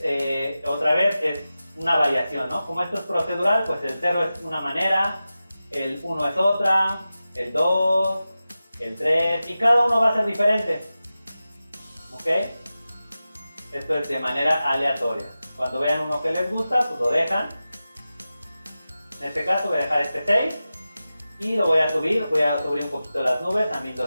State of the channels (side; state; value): both; inverted; correlation -0.94